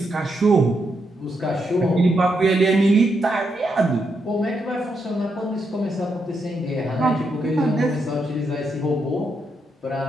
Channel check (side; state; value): both; normal; correlation 0.81